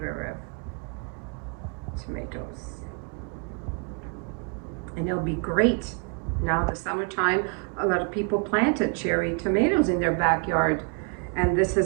of tomatoes. And it'll be great now the summertime. A lot of people planted cherry tomatoes in their backyard, and this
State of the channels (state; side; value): quieter; left; 36.0 dB